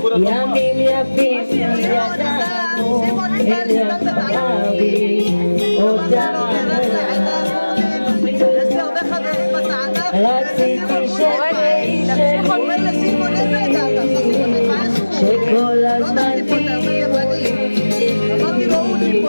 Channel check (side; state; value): both; inverted; correlation -1.00